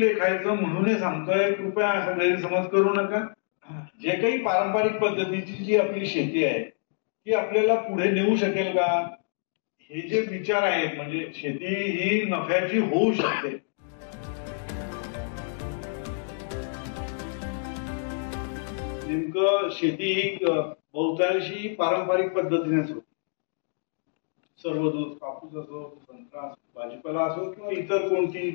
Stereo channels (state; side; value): silent; right; digital silence